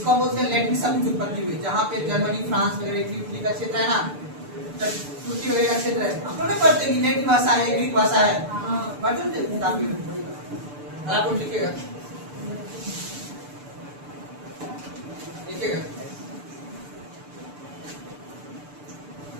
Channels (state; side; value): late; left; 6.8 ms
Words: हम बोलते हैं लैटिन शब्द की उत्पत्ति हुई। जहाँ पे जर्मनी, फ्रांस वगैरह इटली का क्षेत्र है ना, तुर्की वगैरह का क्षेत्र है, हम लोग नहीं पढ़ते कि लैटिन भाषा है, ग्रीक भाषा है, आप लिखिएगा, लिखिएगा